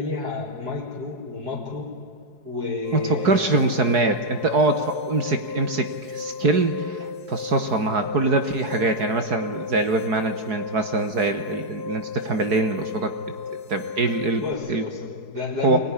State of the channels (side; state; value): left; late; 4.7 ms